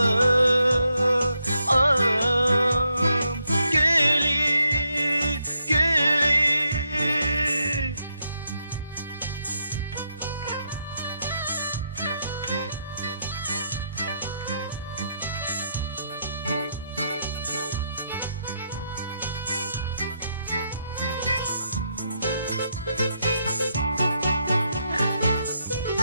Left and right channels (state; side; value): inverted; both; correlation -0.79